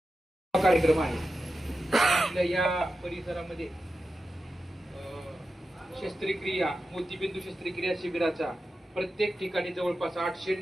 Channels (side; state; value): both; normal; correlation 0.92